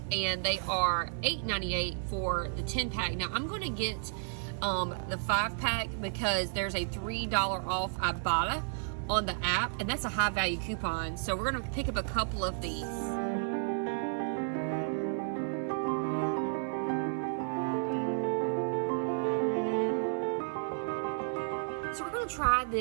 and they are $8.98 for the 10-pack. Now, I'm going to get the 5-pack because there's a $3 off Ibotta on the app, and that's a high-value coupon. So we're going to pick up a couple of these. So we're going to try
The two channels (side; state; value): left; silent; 56 dB below the other